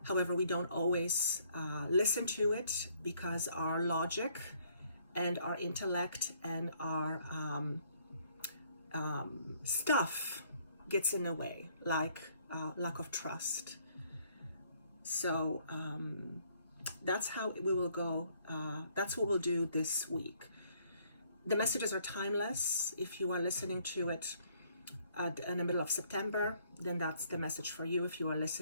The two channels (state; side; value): inverted; both; correlation -0.65